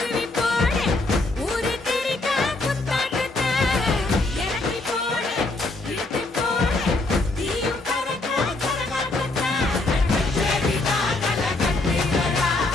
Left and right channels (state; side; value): quieter; right; 3.1 dB